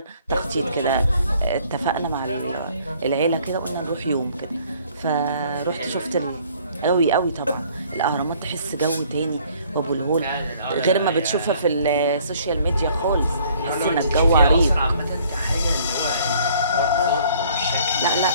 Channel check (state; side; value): inverted; both; correlation -0.58